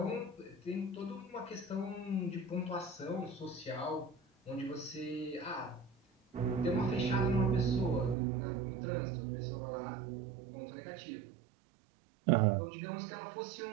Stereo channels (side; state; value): left; drops out; at 8.2 s